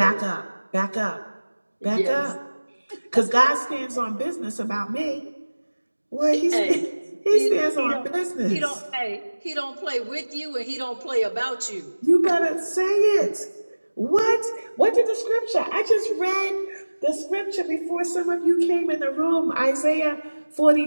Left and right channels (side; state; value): both; inverted; correlation -1.00